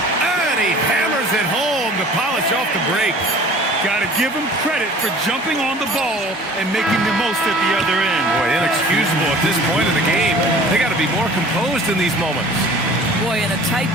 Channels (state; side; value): normal; both; correlation 0.47